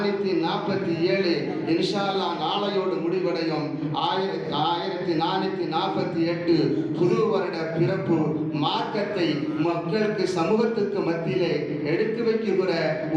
இன்ஷா அல்லாஹ் நாளையோடு முடிவடையும். 1448 புது வருட பிறப்பு மார்க்கத்தை மக்களுக்கு சமூகத்துக்கு மத்தியிலே எடுத்து வைக்கிற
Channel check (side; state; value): both; identical; correlation 1.00